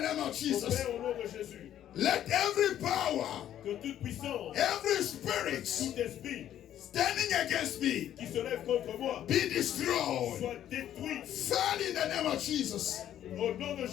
name of Mon Jesus. Père, au nom de Jésus. Let every power, Que toute puissance, every spirit tout esprit standing against me qui se lève contre moi be destroyed. soit détruit Fall in the name of Jesus. au nom de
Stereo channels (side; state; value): right; quieter; 11.2 dB